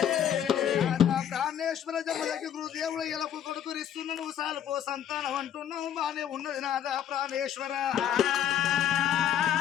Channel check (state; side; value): quieter; right; 9.8 dB